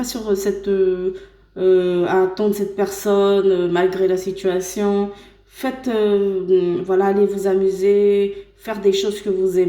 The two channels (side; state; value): both; identical; correlation 1.00